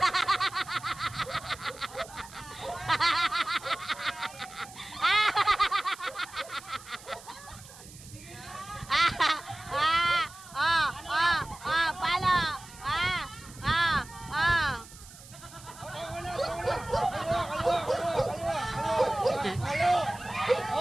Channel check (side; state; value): right; noise; hiss, 19 dB below the sound